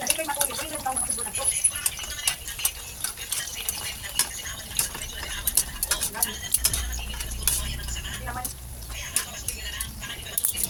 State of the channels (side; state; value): both; identical; correlation 1.00